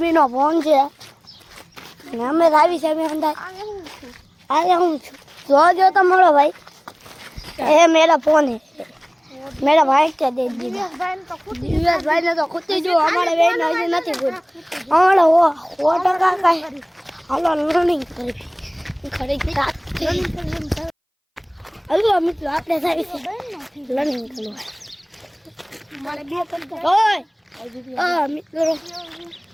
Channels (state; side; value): identical; both; correlation 1.00